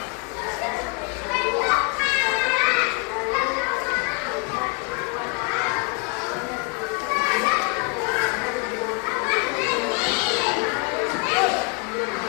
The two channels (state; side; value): quieter; right; 31.9 dB